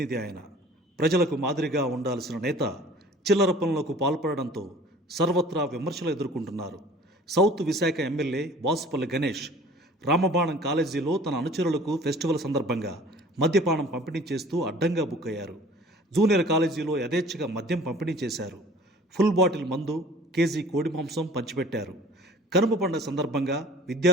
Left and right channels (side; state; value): both; normal; correlation 0.47